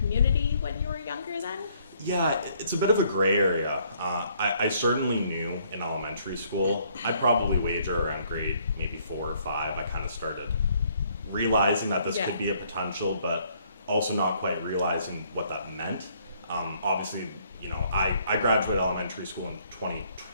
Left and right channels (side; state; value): both; inverted; correlation -0.65